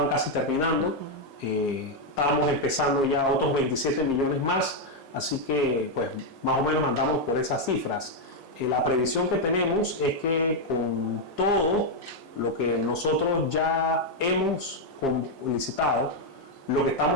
casi terminando. Estábamos empezando ya otros 27 millones más, así que pues más o menos andamos por esas cifras. La previsión que tenemos es que con todo lo que nosotros ya hemos licitado, lo que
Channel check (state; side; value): normal; both; correlation 0.01